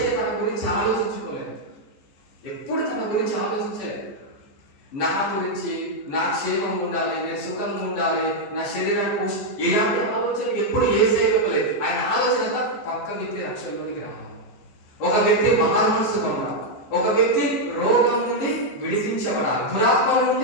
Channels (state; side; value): late; right; 14 ms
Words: తన గురించి ఆలోచించుకోలేదు, ఎప్పుడు తన గురించి ఆలోచించలేదు. నా గురించి, నా క్షేమం ఉండాలి, నేను సుఖంగా ఉండాలి, నా శరీరాన్ని ఇలాంటి ఆలోచన ఎప్పుడు యేసయ్య ఇవ్వలేదు. ఆయన ఆలోచన అంతా పక్క వ్యక్తి రక్షణలోనికి రావాలి, ఒక వ్యక్తి మనసుగా ఉండాలి, ఒక వ్యక్తి రోగం నుండి విడిపించబడాలి, దురాత్మ